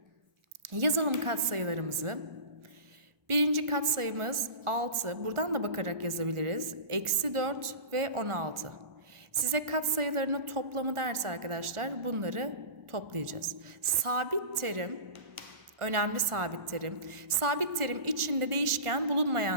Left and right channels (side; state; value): left; late; 1.4 ms